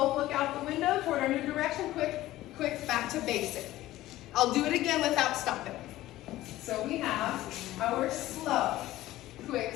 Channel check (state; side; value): quieter; right; 15.8 dB